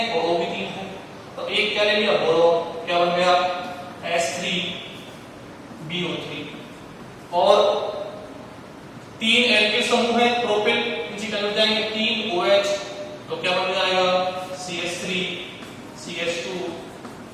और O भी 3 है, तो एक क्या ले लिया बोरोन, क्या बन गया H3 BO3। और 3 एल्किल समूह है प्रोपिल, नीचे चले जाएंगे 3 OH, तो क्या बन जाएगा CH3 CH2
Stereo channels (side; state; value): both; identical; correlation 1.00